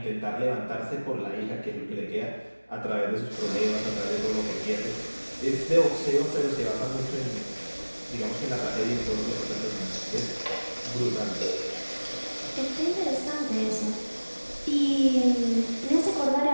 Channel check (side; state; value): both; inverted; correlation -1.00